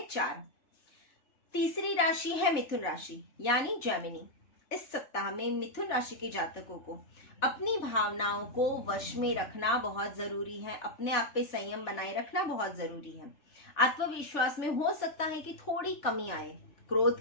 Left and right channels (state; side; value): late; right; 3.4 ms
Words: 4। तीसरी राशि है मिथुन राशि यानी जेमिनी। इस सप्ताह में मिथुन राशि के जातकों को अपनी भावनाओं को वश में रखना बहुत जरूरी है। अपने आप पे संयम बनाए रखना बहुत जरूरी है। आत्मविश्वास में हो सकता है कि थोड़ी कमी आए।